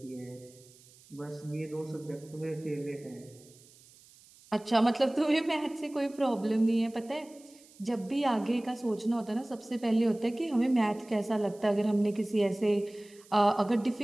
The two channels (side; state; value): right; noise; hiss, 25 dB below the sound